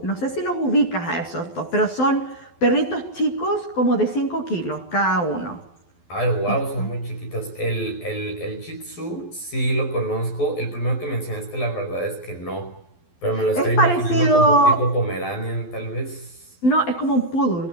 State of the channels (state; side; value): late; right; 12 ms